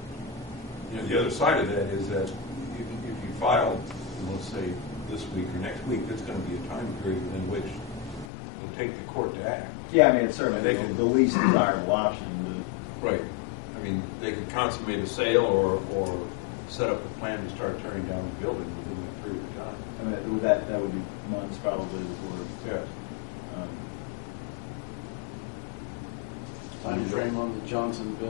And the other side of that is that if you file, let's say this week or next week, there's going to be a time period in which it'll take the court to act. Yeah, I mean, it's certainly They can- the least desirable option. Right. I mean, they could consummate a sale or set up a plan to start tearing down the building within that period of time. I mean, that would be months probably before. Yes. Time frame on the Johnson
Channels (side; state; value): right; drops out; at 8.2 s